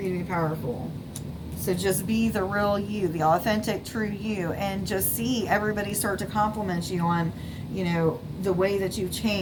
you to be powerful. So just be the real you, the authentic, true you, and just see everybody start to compliment you on, the way that you've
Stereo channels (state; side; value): identical; both; correlation 1.00